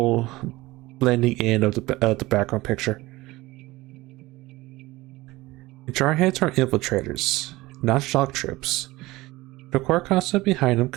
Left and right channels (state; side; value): quieter; left; 19.4 dB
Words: blending in of the background picture. Jarheads are infiltrators, not shock troops. The core concept behind them